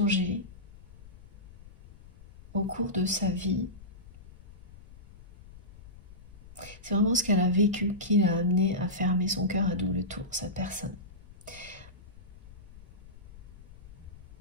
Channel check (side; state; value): left; noise; rumble, 19 dB below the sound